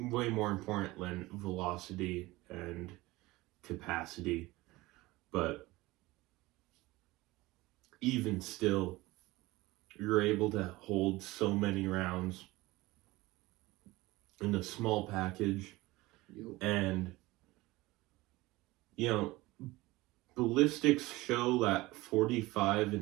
than velocity and capacity. But even still, you're able to hold so many rounds in a small package. Yep. And, you know, ballistics show that 45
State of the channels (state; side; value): quieter; left; 20.1 dB